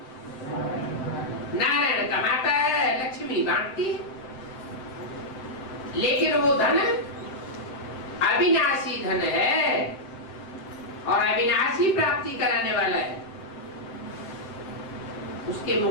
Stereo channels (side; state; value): right; late; 7.7 ms